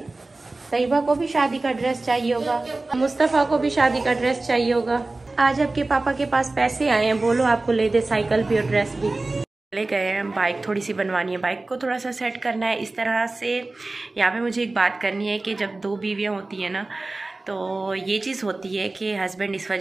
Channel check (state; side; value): quieter; left; 3.2 dB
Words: तैयबा को भी शादी का ड्रेस चाहिए होगा, मुस्तफ़ा को भी शादी का ड्रेस चाहिए होगा। आज आपके पापा के पास पैसे आए हैं, बोलो आपको ले दे साइकिल भी और ड्रेस भी। ले गए हैं, बाइक थोड़ी सी बनवानी है, बाइक को थोड़ा सा सेट करना है इस तरह से। यहाँ पे मुझे एक बात करनी है कि जब 2 बीवियाँ होती हैं ना, तो ये चीज़ होती है कि हस्बैंड इस